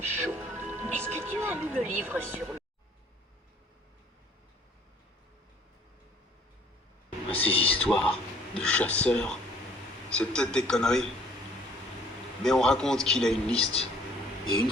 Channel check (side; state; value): both; normal; correlation 0.57